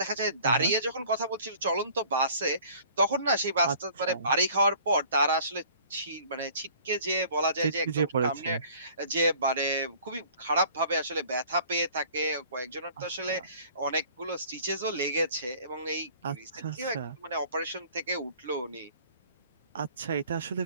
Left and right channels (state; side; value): inverted; both; correlation -0.52